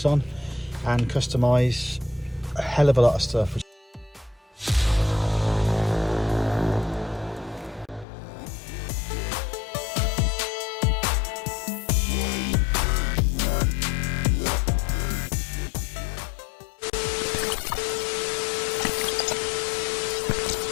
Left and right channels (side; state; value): right; drops out; at 8.1 s